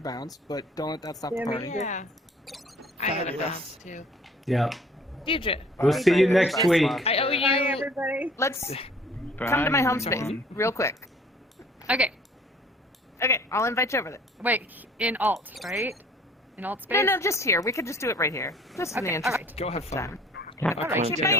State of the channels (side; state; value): both; normal; correlation 0.53